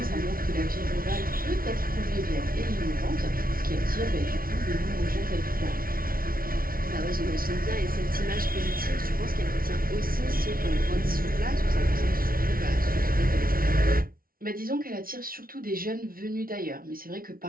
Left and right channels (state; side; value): late; left; 0.43 ms